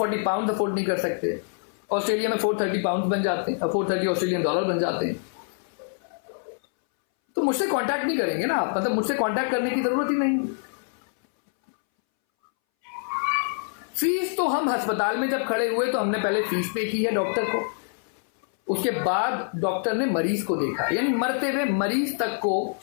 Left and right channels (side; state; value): right; silent; 61 dB below the other